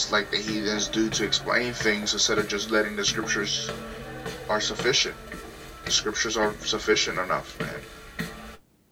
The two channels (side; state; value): both; identical; correlation 1.00